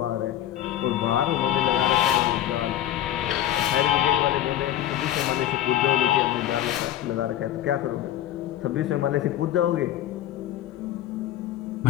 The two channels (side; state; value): right; quieter; 12.2 dB